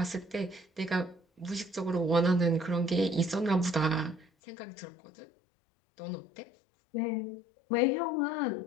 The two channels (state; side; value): drops out; right; at 4.2 s